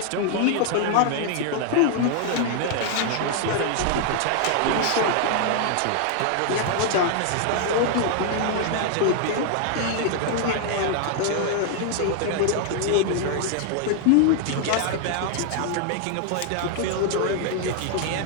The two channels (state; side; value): different; both; correlation 0.00